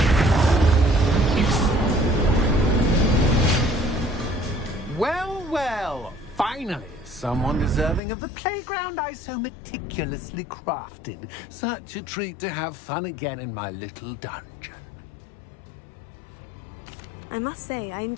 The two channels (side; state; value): right; drops out; at 8.0 s